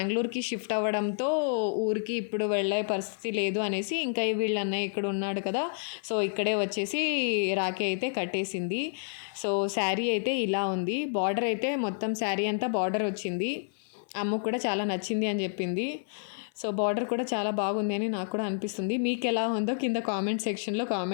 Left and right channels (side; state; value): right; silent; 58 dB below the other